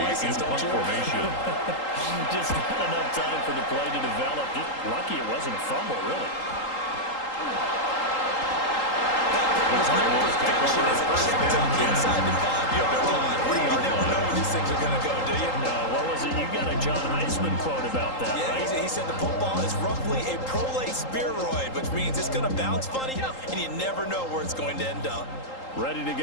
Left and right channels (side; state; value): right; late; 3.8 ms